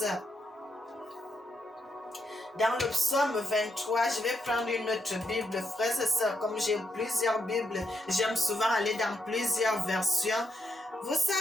Dans le psaume 23, je vais prendre une autre Bible, frères et sœurs. Comme j'ai plusieurs Bibles, j'aime souvent aller dans plusieurs versions. Vous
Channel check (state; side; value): normal; both; correlation 0.80